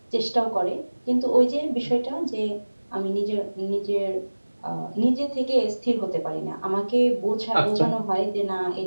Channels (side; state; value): both; inverted; correlation -1.00